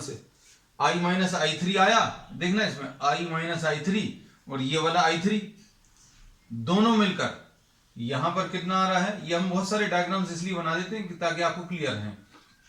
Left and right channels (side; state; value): both; identical; correlation 1.00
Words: I माइनस I3 आया, देखना इसमें I माइनस I3 और ये वाला I3 दोनों मिलकर यहां पर कितना आ रहा है। ये हम बहुत सारे डायग्राम्स इसलिए बना देते हैं ताकि आपको क्लियर है।